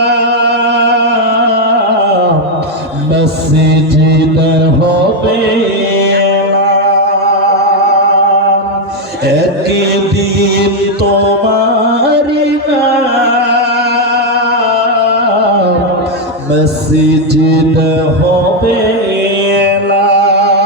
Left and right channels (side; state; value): both; normal; correlation 0.03